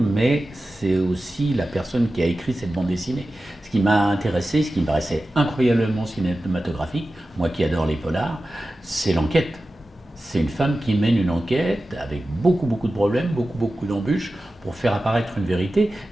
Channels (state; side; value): normal; both; correlation 0.94